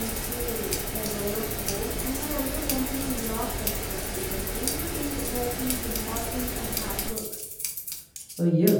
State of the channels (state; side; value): identical; both; correlation 1.00